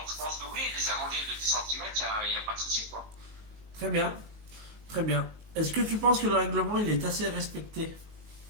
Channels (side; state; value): left; late; 19 ms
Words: je pense que oui, les agrandir de 10 cm, il n'y a pas de souci, quoi. Très bien, très bien. Est-ce que tu penses que le règlement, il est assez respecté?